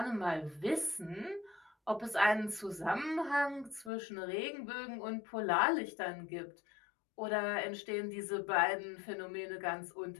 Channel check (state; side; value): drops out; right; at 3.9 s